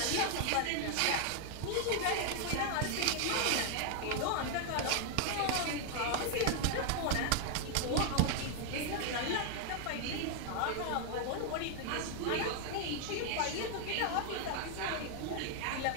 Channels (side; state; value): both; different; correlation 0.00